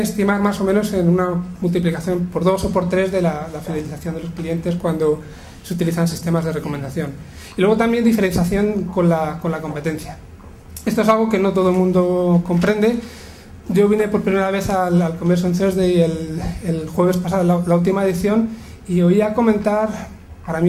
más o menos en una multiplicación por 2 o por 3 de la fidelización de los clientes cuando se utilizan sistemas de recomendación. Y luego también diferenciación con la competencia. Esto es algo que no todo el mundo comprende. Yo vine por primera vez al Conversion Thursday el jueves pasado, la última edición, y oía comentar, para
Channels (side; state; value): both; identical; correlation 1.00